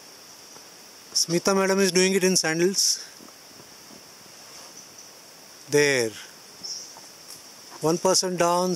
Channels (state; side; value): identical; both; correlation 1.00